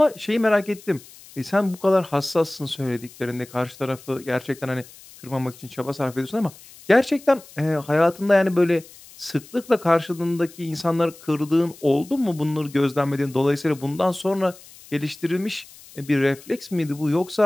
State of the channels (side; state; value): left; noise; hiss, 21 dB below the sound